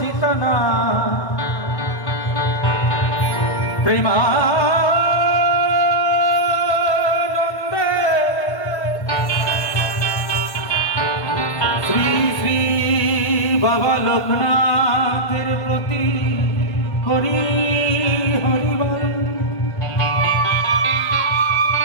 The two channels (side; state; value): right; late; 1.5 ms